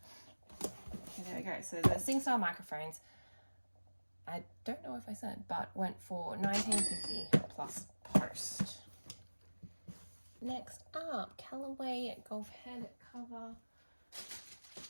Okay, there we go. So the SingStyle microphones, I don't know if I said, but went for $19.50 plus post. Next up, Callaway golf head cover.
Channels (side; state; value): both; inverted; correlation -1.00